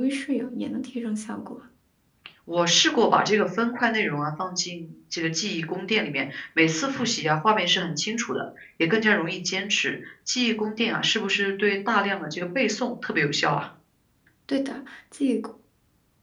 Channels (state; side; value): identical; both; correlation 1.00